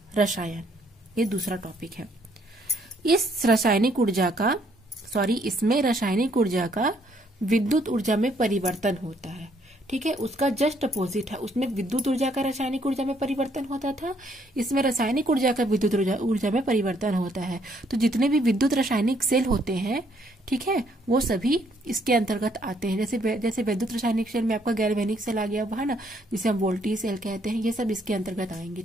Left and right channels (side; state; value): both; normal; correlation 0.68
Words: रसायन, ये दूसरा टॉपिक है। इसमें रासायनिक ऊर्जा का विद्युत ऊर्जा में परिवर्तन होता है। ठीक है, उसका जस्ट अपोजिट है। उसमें विद्युत ऊर्जा का रासायनिक ऊर्जा में परिवर्तन होता था, इसमें रासायनिक ऊर्जा का विद्युत ऊर्जा में परिवर्तन होता है। तो जितने भी विद्युत रासायनिक सेल होते हैं, ठीक है, वो सभी इसके अंतर्गत आते हैं। जैसे विद्युत रासायनिक सेल में आपका गैल्वेनिक सेल आ गया है ना, जिसे हम वोल्टेज सेल कहते हैं, ये सब इसके अंतर्गत आएंगे।